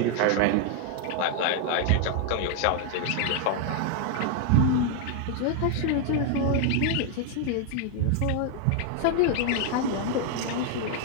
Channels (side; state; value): both; different; correlation 0.00